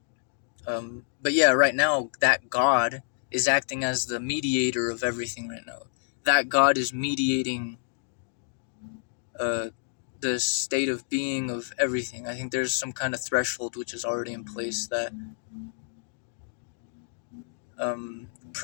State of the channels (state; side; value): silent; right; digital silence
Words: But yeah, right now that God is acting as the mediator of everything right now. That God is mediating uh, the state of being of everything. I think there's some kind of threshold which is already in place that